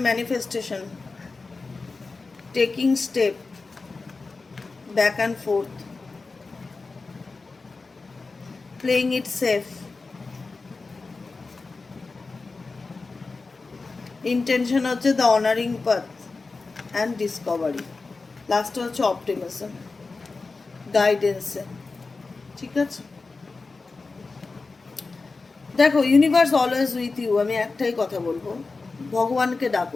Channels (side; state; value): right; quieter; 4.0 dB